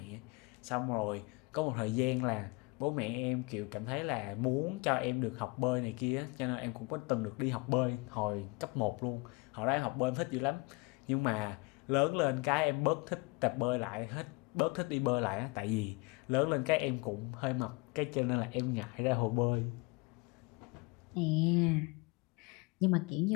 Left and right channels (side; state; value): right; quieter; 27.0 dB